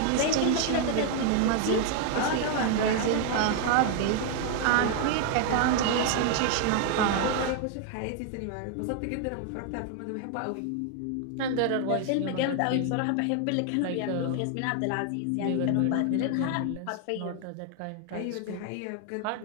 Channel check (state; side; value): different; both; correlation 0.00